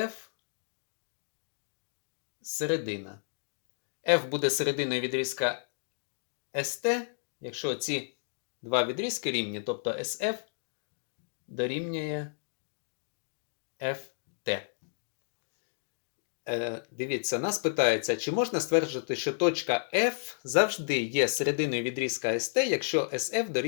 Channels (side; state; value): right; silent; digital silence